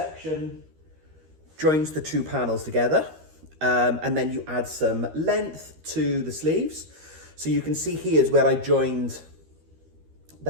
joins the 2 panels together. And then you add some length to the sleeves. So you can see here's where I joined the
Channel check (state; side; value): late; left; 13 ms